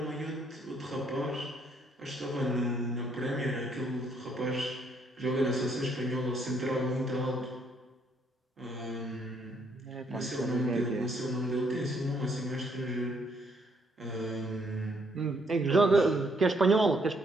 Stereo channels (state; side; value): normal; both; correlation 0.70